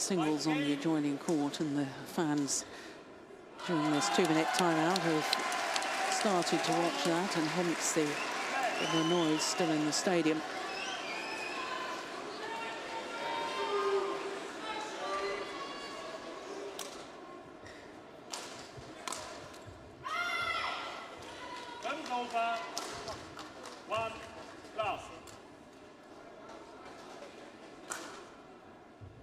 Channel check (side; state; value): both; identical; correlation 1.00